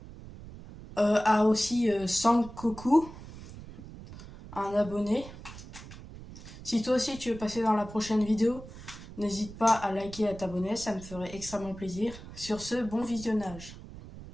À aussi Sankoku, un abonné. Si toi aussi tu veux passer dans la prochaine vidéo, n'hésite pas à liker et à t'abonner, ça me ferait extrêmement plaisir. Sur ce, bon visionnage.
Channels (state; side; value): noise; right; rumble, 15 dB below the sound